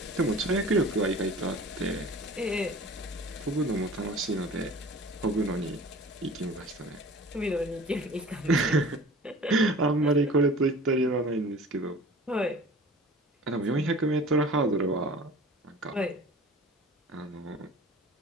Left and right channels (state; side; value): normal; both; correlation 0.42